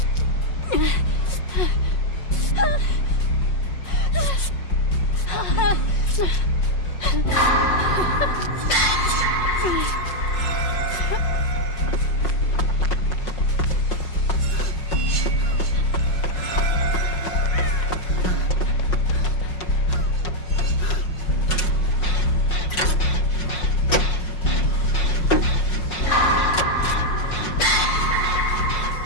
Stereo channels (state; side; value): late; right; 5.5 ms